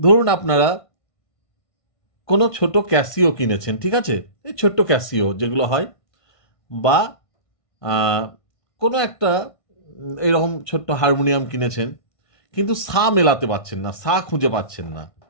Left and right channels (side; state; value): right; late; 1.5 ms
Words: আপনারা কোনো ছোট ক্যাসিও কিনেছেন, ঠিক আছে? এই ছোট্ট ক্যাসিও যেগুলো হয়, বা আহ, কোনো একটা এইরকম ছোট্ট হারমোনিয়াম কিনেছেন, কিন্তু সা মেলাতে পারছেন না, সা খুঁজে পাচ্ছেন না,